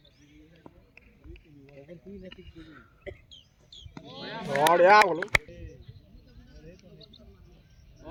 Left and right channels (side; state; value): both; identical; correlation 1.00